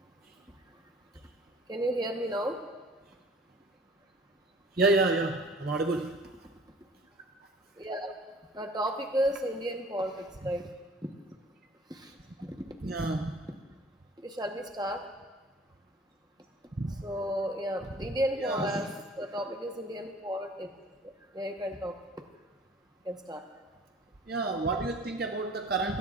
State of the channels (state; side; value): normal; both; correlation 0.49